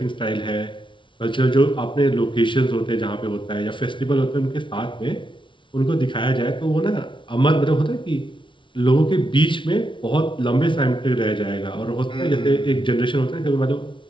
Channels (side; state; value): right; late; 0.24 ms